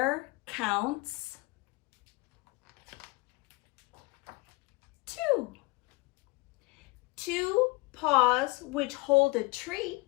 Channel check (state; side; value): quieter; right; 24.7 dB